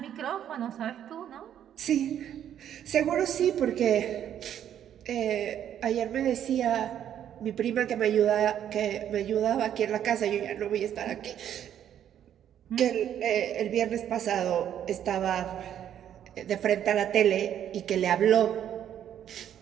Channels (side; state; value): left; quieter; 10.1 dB